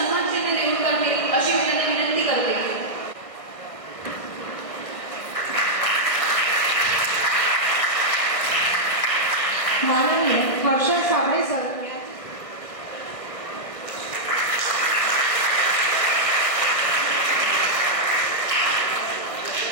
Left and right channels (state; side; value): late; right; 1.5 ms